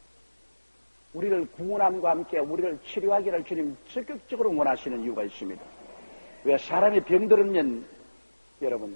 우리를 구원함과 함께 우리를 치료하기를 주님 적극적으로 원하시는 이유가 있습니다. 왜? 사람이 병들으면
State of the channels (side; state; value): both; inverted; correlation -1.00